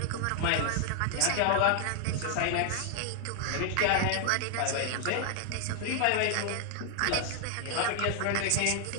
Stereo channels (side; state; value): both; different; correlation 0.00